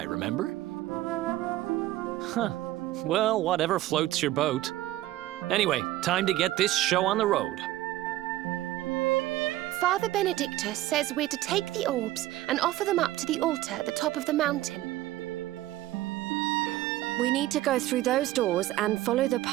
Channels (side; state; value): left; quieter; 15.7 dB